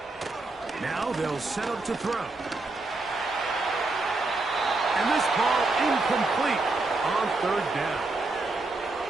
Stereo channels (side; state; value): left; quieter; 3.2 dB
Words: Now they'll set up to throw. And this ball incomplete on third down.